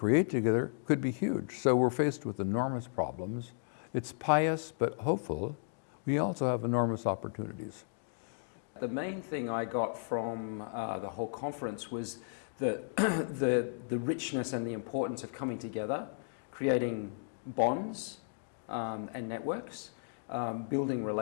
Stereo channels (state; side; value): silent; right; digital silence